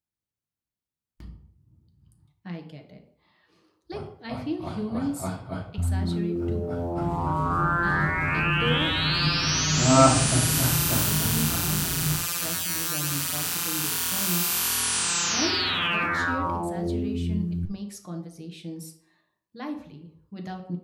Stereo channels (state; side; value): identical; both; correlation 1.00